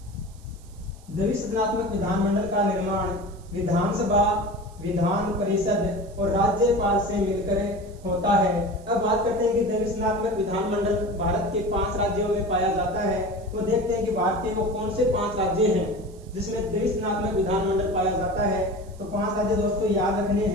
द्विसदनात्मक विधानमंडल का निर्माण विधानसभा, विधान परिषद और राज्यपाल से मिलकर होता है। अब बात करते हैं कि द्विसदनात्मक विधानमंडल भारत के 5 राज्यों में पाया जाता है। तो देखते हैं कि भारत के वो कौन से 5 राज्य हैं जिसमें द्विसदनात्मक विधानमंडल पाया जाता है। तो 5 राज्य दोस्तों याद रखने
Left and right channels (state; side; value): noise; right; hiss, 27 dB below the sound